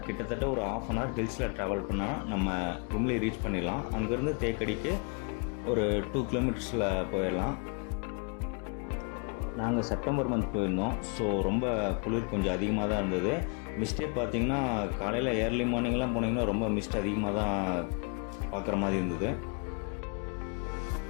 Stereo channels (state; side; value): quieter; right; 35.6 dB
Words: கிட்டத்தட்ட ஒரு ½ அன் ஹவர் ஹில்ஸில் ட்ராவல் பண்ணால் நம்ம கும்ளி ரீச் பண்ணிடலாம். அங்கேருந்து தேக்கடிக்கு ஒரு 2 கிலோமீட்டர்ஸில் போயிடலாம். நாங்கள் செப்டம்பர் மந்த் போயிருந்தோம். ஸோ ரொம்ப குளிர் கொஞ்சம் அதிகமாக தான் இருந்தது. மிஸ்டே பார்த்திங்கன்னா காலையில் ஏர்லி மார்னிங்லாம் போனீங்கன்னா ரொம்ப மிஸ்ட் அதிகமாக தான் பார்க்குற மாதிரி இருந்தது.